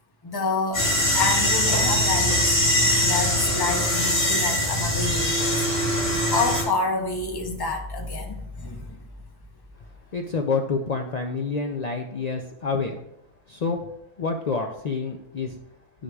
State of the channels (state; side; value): normal; both; correlation 0.04